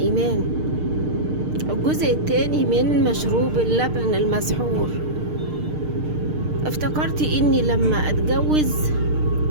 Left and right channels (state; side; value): late; left; 6.6 ms